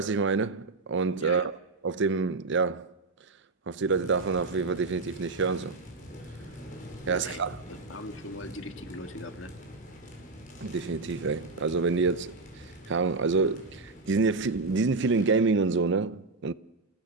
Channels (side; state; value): left; quieter; 3.8 dB